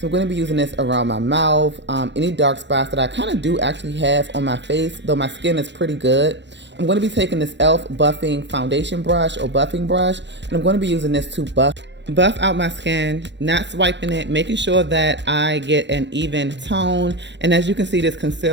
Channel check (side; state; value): left; late; 0.52 ms